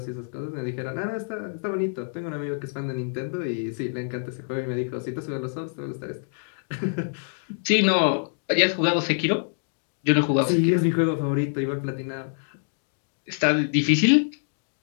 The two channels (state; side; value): silent; right; digital silence